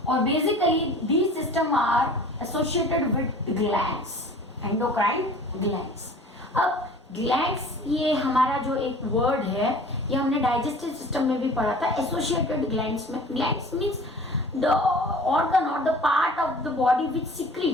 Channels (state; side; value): normal; both; correlation 0.45